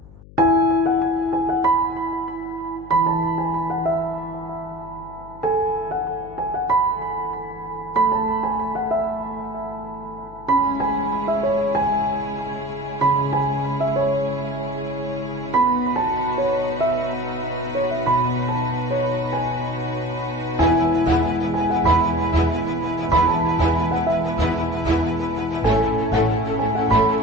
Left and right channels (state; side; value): noise; left; hum, 20 dB below the sound